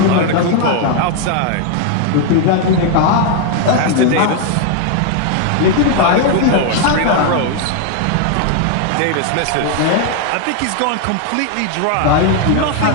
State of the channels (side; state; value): both; different; correlation 0.00